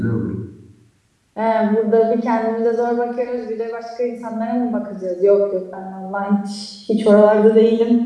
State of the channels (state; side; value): identical; both; correlation 1.00